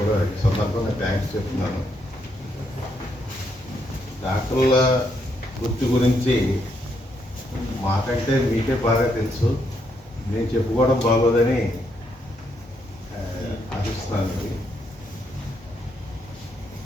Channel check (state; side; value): normal; both; correlation 0.77